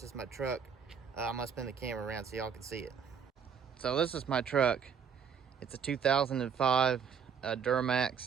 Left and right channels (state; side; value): quieter; left; 7.0 dB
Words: is my truck. I'm gonna spin the camera around so y'all can see it. So this is my truck. It's a 2005